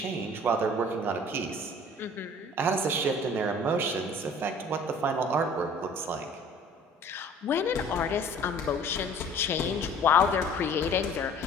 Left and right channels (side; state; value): both; normal; correlation 0.49